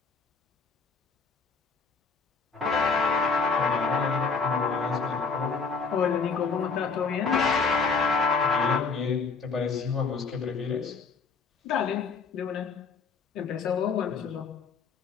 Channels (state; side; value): quieter; right; 5.1 dB